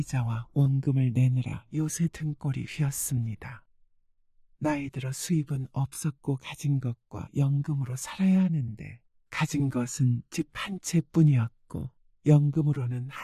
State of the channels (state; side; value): identical; both; correlation 1.00